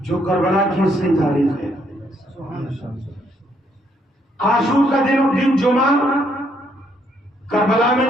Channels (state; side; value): normal; both; correlation 0.71